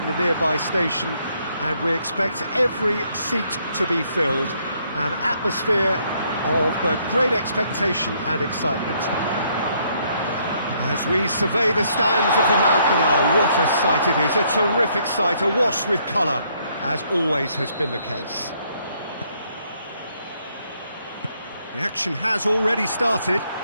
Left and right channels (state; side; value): inverted; both; correlation -0.70